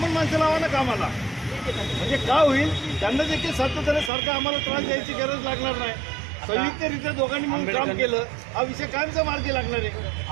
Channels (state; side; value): drops out; left; at 4.1 s